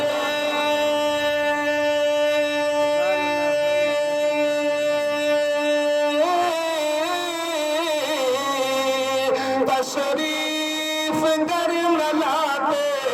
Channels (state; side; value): identical; both; correlation 1.00